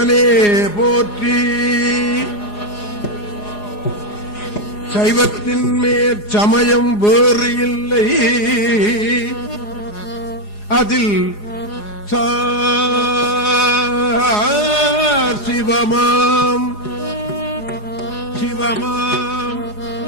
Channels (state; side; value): late; right; 4.8 ms